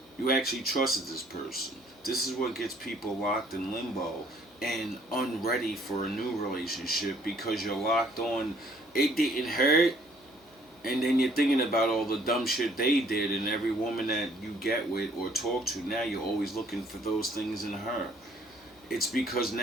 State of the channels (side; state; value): both; normal; correlation 0.61